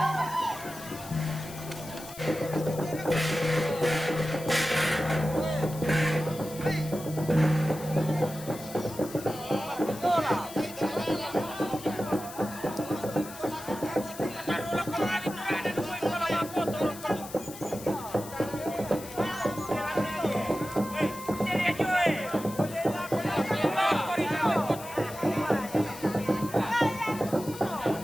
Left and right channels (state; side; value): noise; left; hiss, 14 dB below the sound